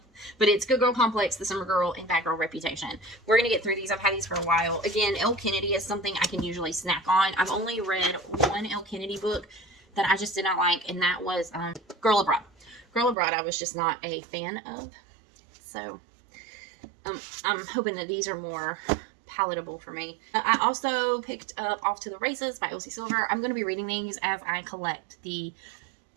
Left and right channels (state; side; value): drops out; left; at 13.2 s